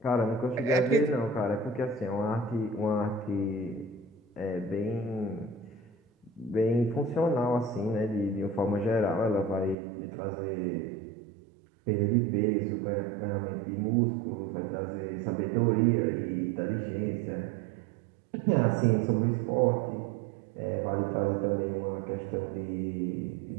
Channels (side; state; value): left; drops out; at 9.8 s